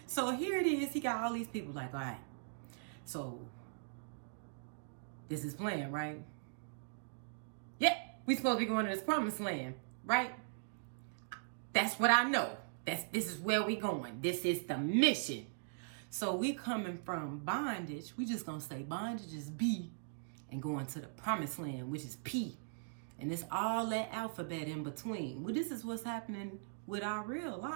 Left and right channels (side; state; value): left; silent; digital silence